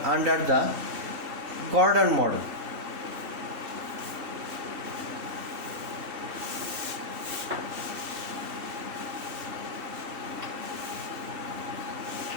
under the Gordon model.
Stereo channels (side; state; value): left; late; 2.7 ms